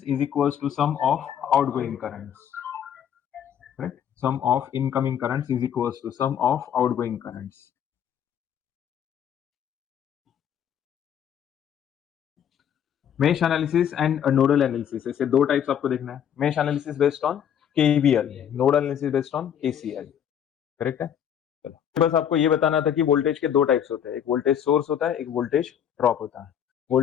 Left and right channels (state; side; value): quieter; right; 9.1 dB